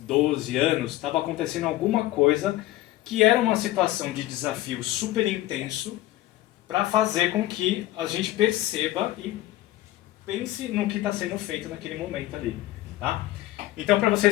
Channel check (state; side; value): quieter; right; 16.1 dB